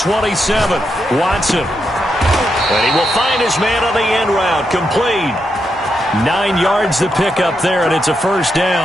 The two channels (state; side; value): normal; both; correlation 0.83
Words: Watson. And he will find his man on the end route. Complete. 9 yards to pick up there, and it's a first